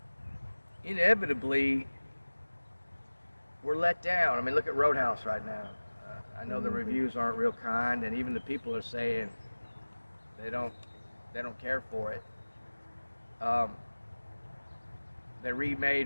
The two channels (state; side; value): inverted; both; correlation -1.00